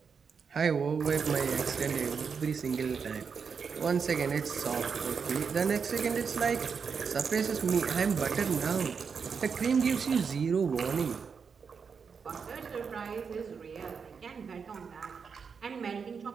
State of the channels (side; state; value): left; quieter; 6.0 dB